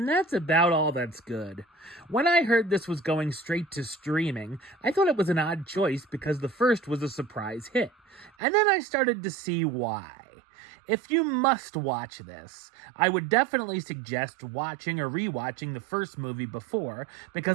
that's about all that's good. When I heard this was going straight to streaming, I thought it was an odd choice because the first was a surprise hit, and then I started to see why. If you must watch this, I would definitely suggest watching or rewatching the first movie before,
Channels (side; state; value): left; drops out; at 8.3 s